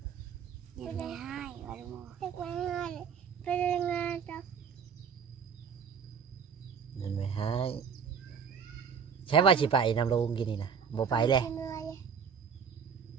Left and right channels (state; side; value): quieter; left; 6.7 dB